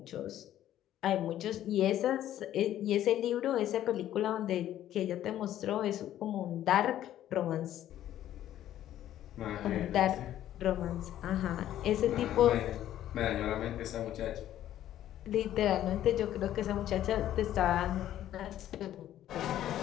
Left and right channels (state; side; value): quieter; right; 12.2 dB